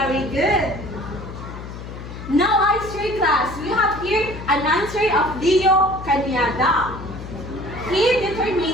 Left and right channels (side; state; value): left; noise; hum, 11 dB below the sound